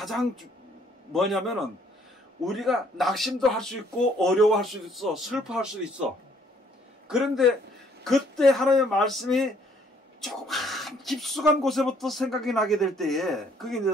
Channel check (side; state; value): both; normal; correlation 0.63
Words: 뭐냐면은 우리가 낙심도 할 수 있고 어려워할 수도 있어. 슬퍼할 수도 있어. 그런데 그때 하나님의 말씀이 조금 깊숙한 곳에부터 생각이 나게 될 때에 그게 이제